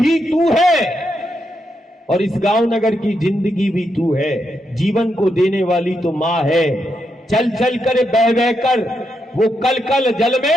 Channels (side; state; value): both; normal; correlation 0.82